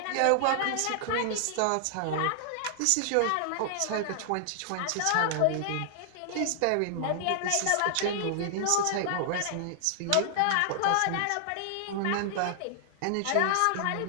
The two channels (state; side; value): different; both; correlation -0.01